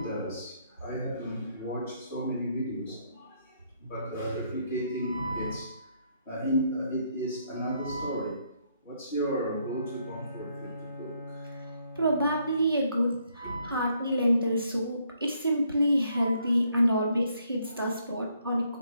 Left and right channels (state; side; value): inverted; both; correlation -0.72